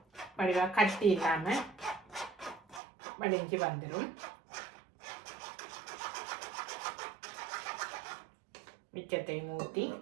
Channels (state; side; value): drops out; left; at 2.8 s